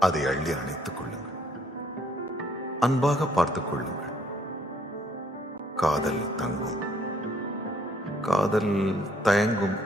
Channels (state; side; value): normal; both; correlation 0.66